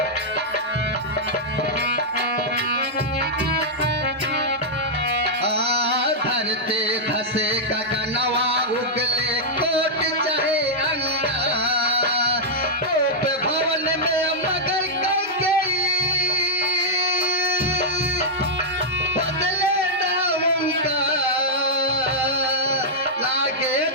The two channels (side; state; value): both; normal; correlation -0.07